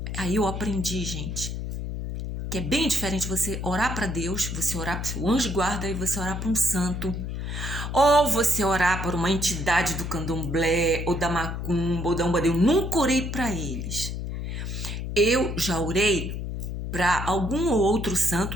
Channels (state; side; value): noise; left; hum, 5 dB below the sound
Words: Aí eu aprendi, gente, que é bem diferente você orar para Deus, você orar para o seu anjo de guarda e você orar para um santo. Ou você orar por uma entidade do candomblé, ou da macumba, ou da umbanda. Eu nunca orei para eles. Eu já orei para algum outro